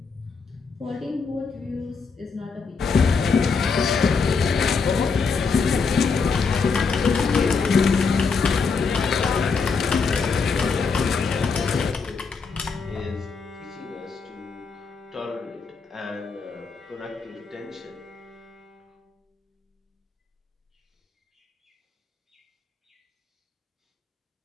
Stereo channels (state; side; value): quieter; right; 5.1 dB